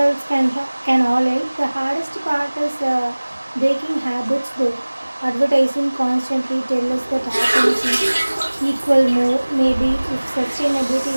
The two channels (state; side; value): inverted; both; correlation -1.00